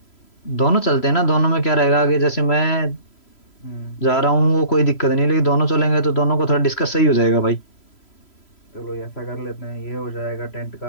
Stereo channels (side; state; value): right; late; 3.0 ms